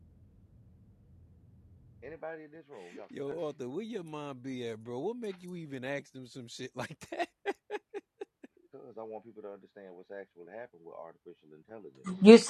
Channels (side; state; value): both; identical; correlation 1.00